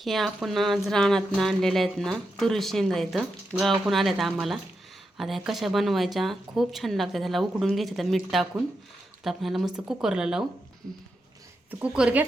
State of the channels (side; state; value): both; normal; correlation 0.86